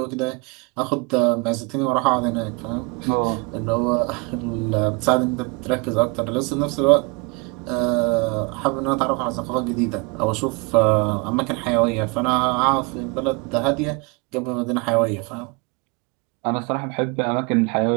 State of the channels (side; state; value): left; quieter; 28.3 dB